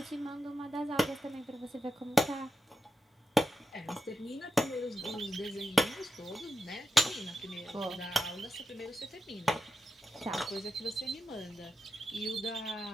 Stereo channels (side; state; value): both; normal; correlation 0.89